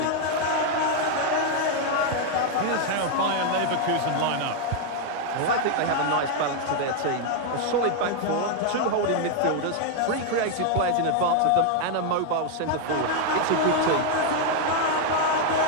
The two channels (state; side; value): different; both; correlation 0.01